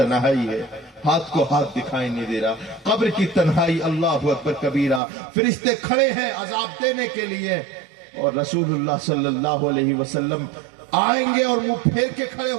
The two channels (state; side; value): drops out; left; at 5.0 s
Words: ہے، ہاتھ کو ہاتھ دکھائی نہیں دے رہا. قبر کی تنہائی، اللہ اکبر کبیرہ. فرشتے کھڑے ہیں عذاب دینے کے لیے، اور رسول اللہ صلی اللہ علیہ وسلم آئیں گے اور منہ پھیر کے کھڑے